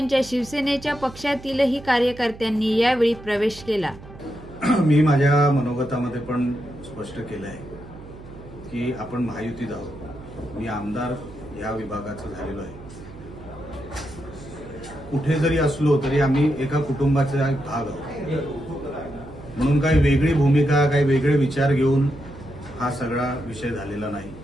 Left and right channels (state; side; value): noise; right; hum, 17 dB below the sound